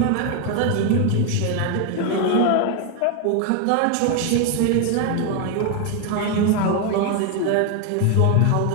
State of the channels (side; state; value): both; different; correlation 0.01